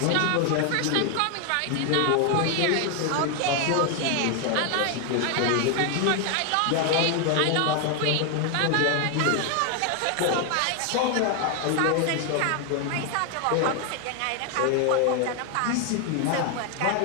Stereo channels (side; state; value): both; different; correlation 0.01